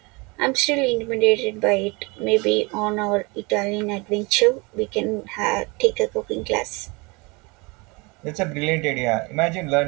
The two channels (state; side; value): quieter; left; 27.3 dB